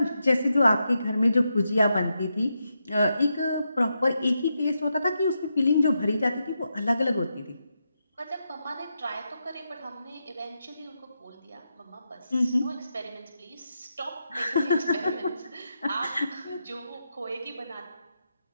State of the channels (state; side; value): inverted; both; correlation -0.85